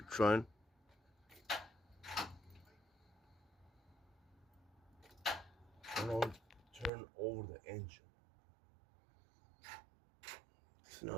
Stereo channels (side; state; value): left; drops out; at 6.9 s